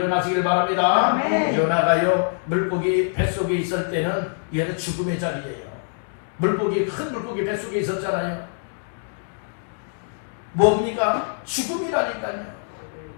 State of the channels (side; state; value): right; silent; digital silence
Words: 바랍니다. 요나가요, 물고기 뱃속에 있을 때는 얘는 죽음의 자리예요. 물고기, 큰 물고기 뱃속에 있었잖아요. 뭡니까? 죽음이라니까요.